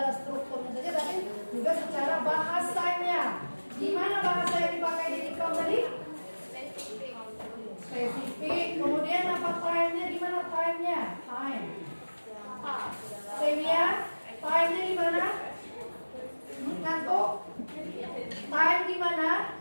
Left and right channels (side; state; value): both; inverted; correlation -1.00